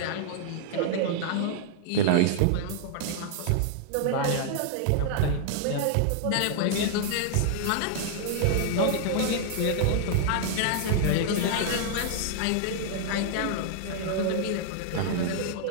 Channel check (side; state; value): both; different; correlation 0.00